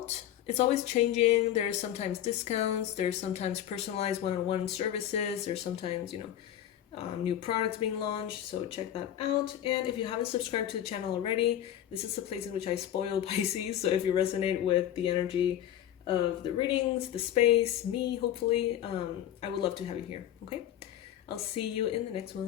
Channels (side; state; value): right; quieter; 11.3 dB